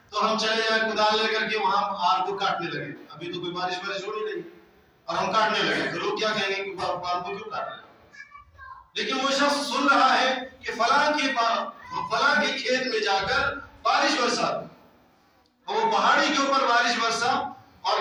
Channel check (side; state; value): both; identical; correlation 1.00